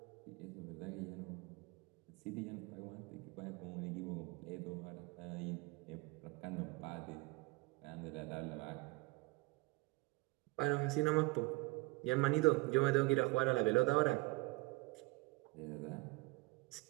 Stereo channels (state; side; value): quieter; left; 23.9 dB